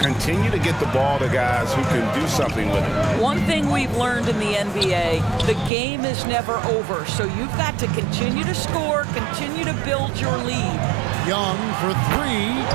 to get the ball to guys who can do something with it. One thing we've learned in the NBA, the game is never over. So you've got to continue to score, continue to build your lead. Young for 3,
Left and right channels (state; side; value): drops out; left; at 5.7 s